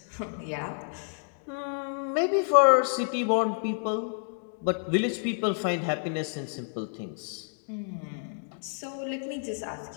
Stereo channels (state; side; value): silent; right; 58 dB below the other